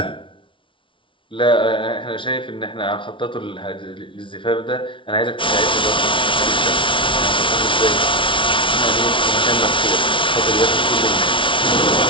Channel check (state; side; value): late; right; 0.25 ms